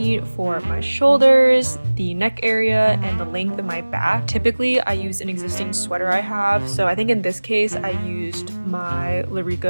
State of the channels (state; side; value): inverted; both; correlation -1.00